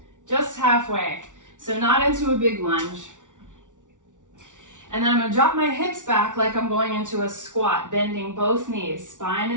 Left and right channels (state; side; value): late; left; 0.87 ms